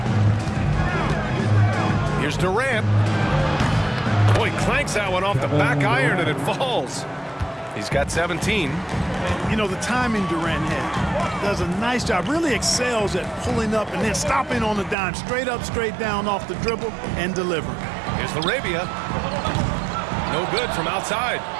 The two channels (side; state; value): left; drops out; at 15.0 s